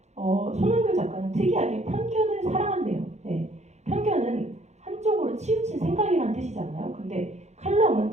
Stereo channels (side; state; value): left; late; 0.33 ms